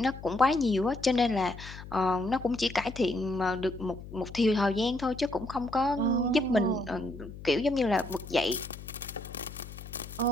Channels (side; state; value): left; noise; hum, 14 dB below the sound